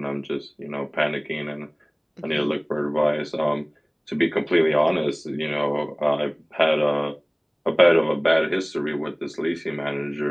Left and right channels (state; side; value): identical; both; correlation 1.00